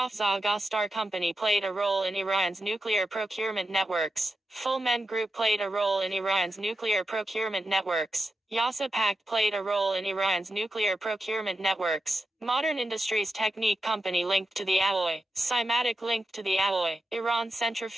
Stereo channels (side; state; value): both; normal; correlation 0.89